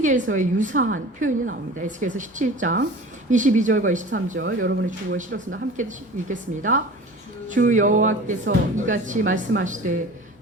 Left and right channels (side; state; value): both; normal; correlation 0.39